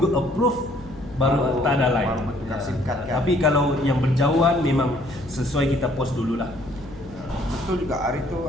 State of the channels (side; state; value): left; noise; hum, 19 dB below the sound